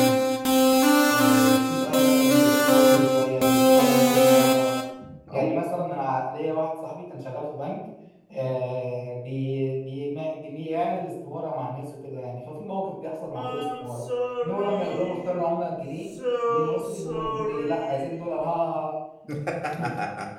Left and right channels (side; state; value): both; identical; correlation 1.00